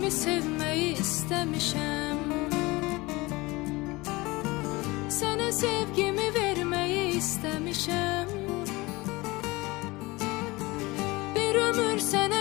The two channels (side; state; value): right; quieter; 22.4 dB